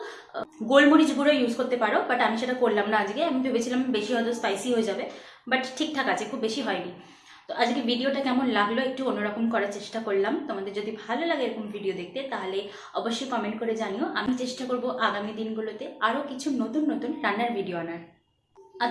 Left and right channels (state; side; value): identical; both; correlation 1.00